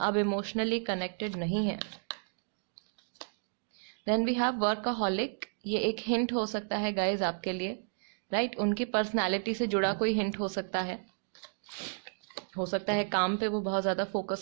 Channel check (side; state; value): left; silent; digital silence